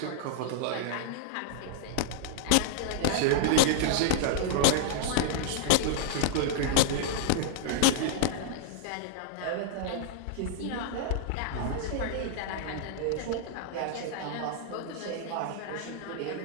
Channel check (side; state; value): both; different; correlation -0.01